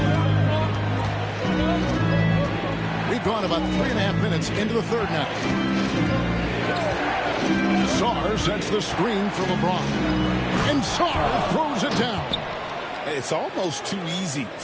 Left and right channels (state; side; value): identical; both; correlation 1.00